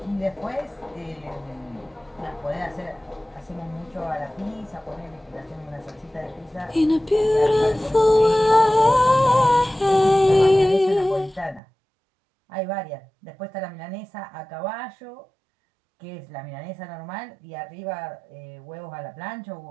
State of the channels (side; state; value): left; drops out; at 11.6 s